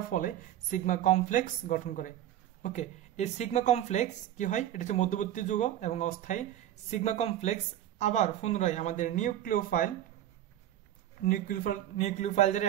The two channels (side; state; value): left; quieter; 12.1 dB